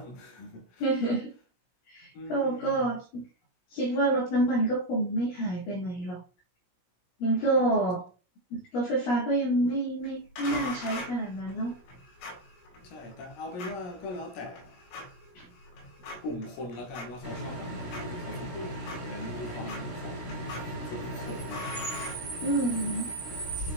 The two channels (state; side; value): late; right; 17 ms